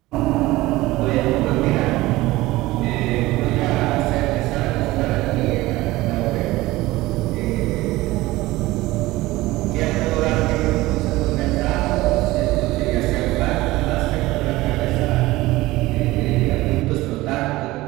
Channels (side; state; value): left; quieter; 18.7 dB